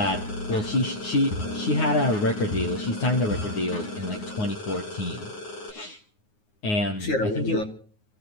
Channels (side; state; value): right; late; 9.5 ms